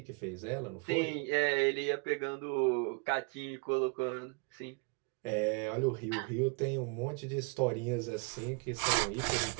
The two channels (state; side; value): quieter; left; 32.2 dB